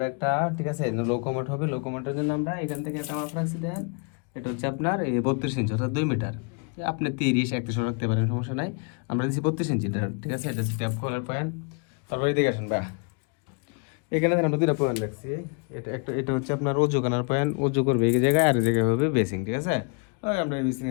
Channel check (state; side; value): quieter; right; 35.1 dB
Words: একটা, ঠিক আছে, লোকোমোট হবে। লোকোমোটের জন্য আমরা এখান থেকে একটা মাপ রাখছি। দেখেন, এটা হচ্ছে আপনার 32 ইঞ্চি, অর্থাৎ 2 মিটার। আপনি 30-31 রাখতে পারেন, সমস্যা নাই। আমরা দিচ্ছি 32 ইঞ্চি, ঠিক আছে? এটা হচ্ছে ট্যাপ কলার পয়েন্ট। তারপরে এদিকে আসেন বা এখানে আমরা দুটা পয়েন্ট রাখছি। এটা হচ্ছে আপনার অজু করার পয়েন্ট, অজু করবে এই জায়গায়, আর এই জায়গায় হবে বেসিং, ঠিক আছে? ওই আমরা এই বেসিং